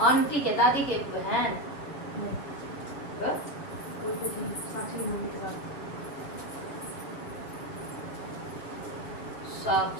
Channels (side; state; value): right; late; 7.4 ms